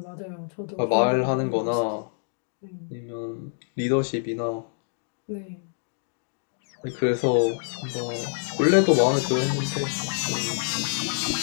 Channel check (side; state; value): right; silent; digital silence